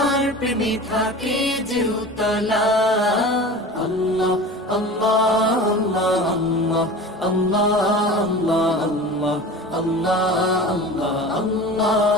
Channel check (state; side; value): normal; both; correlation 0.35